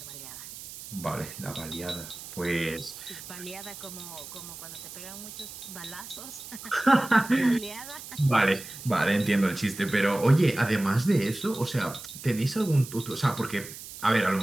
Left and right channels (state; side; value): noise; right; hiss, 13 dB below the sound